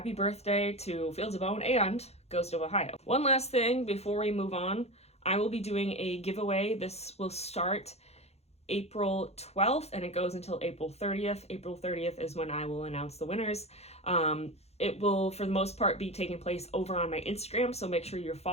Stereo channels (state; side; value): late; right; 0.31 ms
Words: birthday to Fields of Bone and Ghost of Ohio. One last thing before we move on, I will be doing a giveaway. This will start April 12th and it goes until April 30th. April 30th is when I will announce the winners. It will, for the most part, be taking place over on my Instagram, so make sure you're